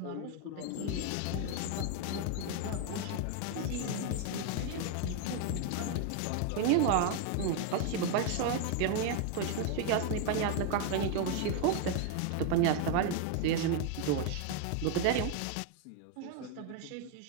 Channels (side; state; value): both; different; correlation 0.01